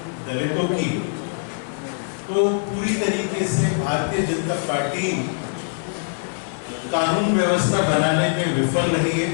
दलितों की, तो पूरी तरीके से भारतीय जनता पार्टी कानून व्यवस्था बनाने में विफल रही है।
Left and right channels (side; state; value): right; silent; digital silence